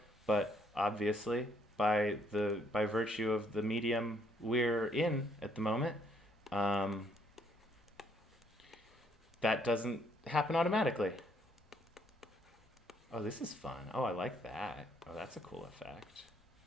but obviously, by virtue of the medium we're in at the moment, that doesn't happen automatically. Oh, this is fun. Oh, I like that. Oh, that's a cool effect.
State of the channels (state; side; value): normal; both; correlation 0.69